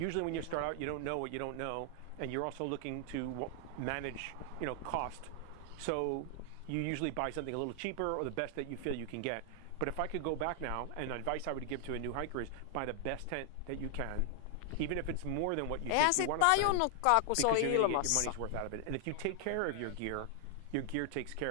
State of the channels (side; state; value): both; different; correlation 0.00